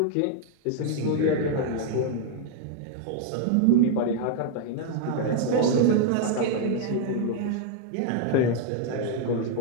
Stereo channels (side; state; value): both; different; correlation 0.00